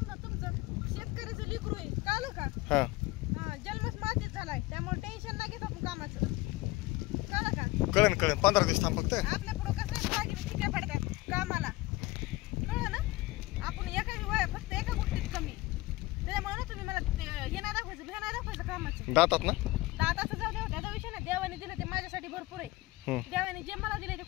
तुमचं शेतकऱ्याचं लेकरू आहे कळलं का हा जन्मच मातीच झालाय त्यामुळे टेन्शन नाही घेत आपण कामाचं कळलं का कळेल 15 दिवस थांब फक्त आपल्या पुढं कसं बाकी ठिकाण पडतात कामाला कळलं ना आपण फक्त एका गोष्टीत कमी त्याच्यामुळे ना तुम्ही मला हे नाही दाखवायचं भ्या नाही दाखवायचं कामाचं दातात ना दाताचं जाऊ द्या त्याचा विषय ना देवाने दिलं ते माझ्यासाठी भरपूर आहे देवाने जे मला दिले ते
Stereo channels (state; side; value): quieter; right; 20.0 dB